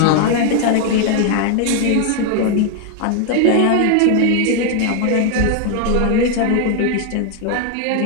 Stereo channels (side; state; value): both; different; correlation 0.00